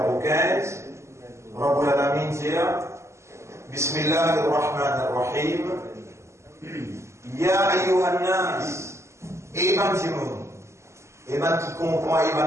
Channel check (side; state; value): left; late; 0.13 ms